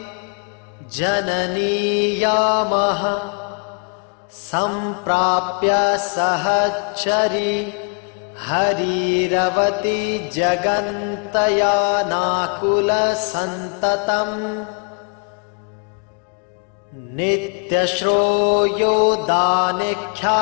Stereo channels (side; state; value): right; quieter; 40.0 dB